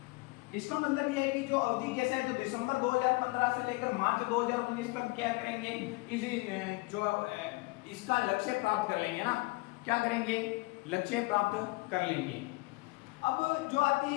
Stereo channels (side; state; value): right; quieter; 24.9 dB